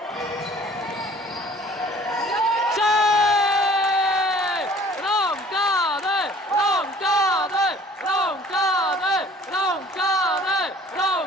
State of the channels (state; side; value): normal; both; correlation 0.52